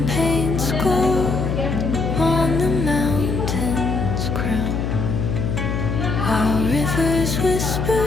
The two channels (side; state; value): left; noise; hum, 1 dB below the sound